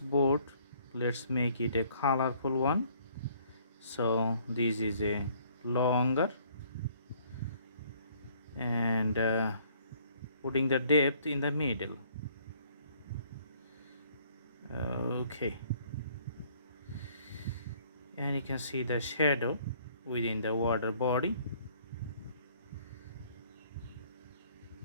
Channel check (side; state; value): both; inverted; correlation -0.61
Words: let's make it a colorful one. So this is a longer and putting the depth in the middle. Okay, and you can see the shadow within the water body.